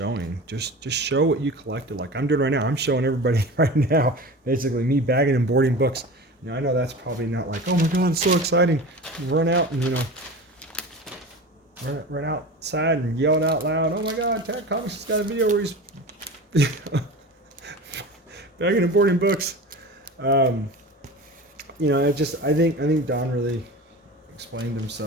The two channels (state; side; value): normal; both; correlation 0.33